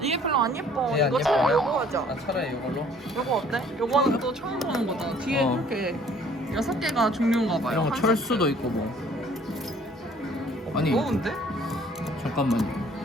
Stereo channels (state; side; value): normal; both; correlation 0.57